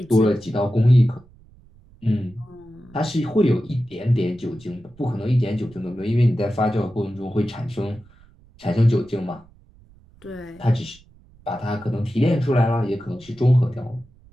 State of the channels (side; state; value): right; noise; rumble, 27 dB below the sound